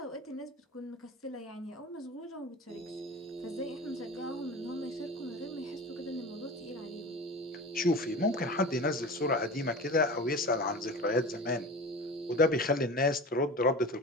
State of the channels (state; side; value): normal; both; correlation 0.33